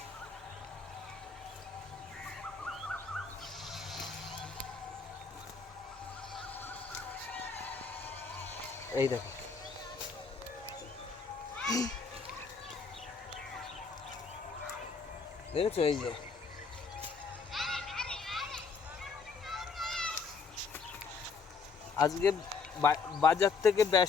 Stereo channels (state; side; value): quieter; right; 5.0 dB